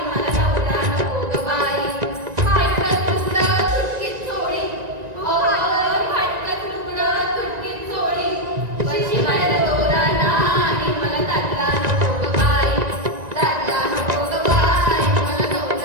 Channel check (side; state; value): left; late; 1.9 ms